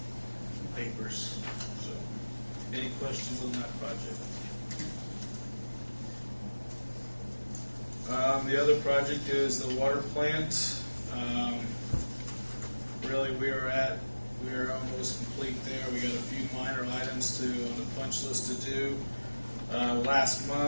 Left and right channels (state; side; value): inverted; both; correlation -1.00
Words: papers. So, any questions on that project? The other project is the water plant. Really, we are almost complete there. We got a few minor items on the punch list to do. Last